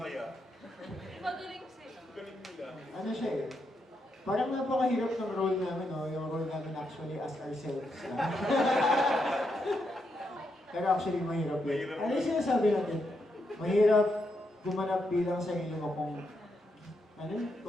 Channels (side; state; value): both; normal; correlation 0.81